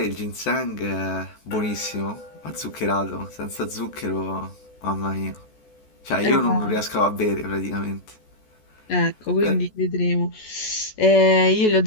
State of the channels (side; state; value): right; late; 14 ms